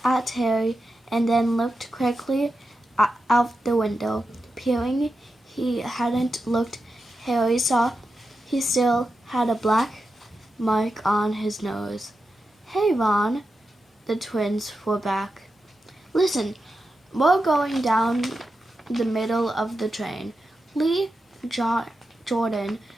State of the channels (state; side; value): normal; both; correlation 0.90